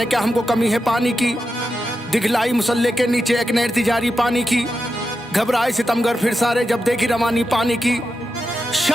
क्या हमको कमी है पानी की, दिखलाई मुसल्ले के नीचे एक नहर थी जारी पानी की। घबराए सितमगर फिर सारे जब देखी रवानी पानी की।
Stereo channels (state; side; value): normal; both; correlation 0.88